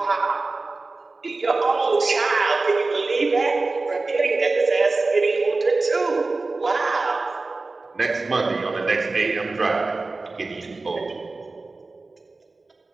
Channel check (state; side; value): quieter; left; 3.5 dB